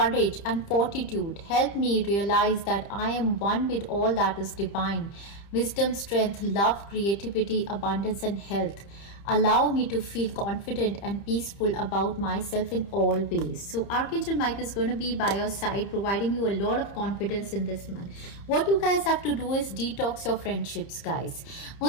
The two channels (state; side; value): late; right; 30 ms